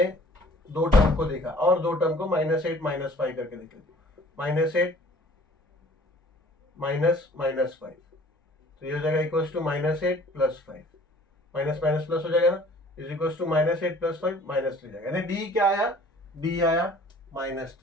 दो टर्म को देखा और दो टर्म को -8 -5 करके देख लेते. -8 -5 तो ये हो जाएगा equals to -8 + 5. Minus minus plus हो जाएगा ना, इज इक्वल्स टू -8 + 5 -3 जाएगा. यानी डी क्या आया, डी आया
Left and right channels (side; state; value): both; normal; correlation 0.52